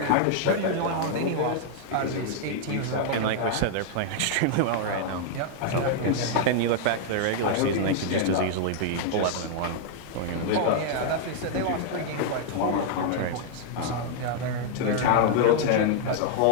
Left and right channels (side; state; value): both; different; correlation -0.01